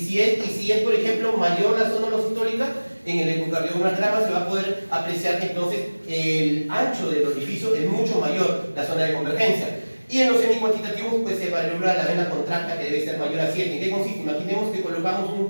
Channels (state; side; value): inverted; both; correlation -1.00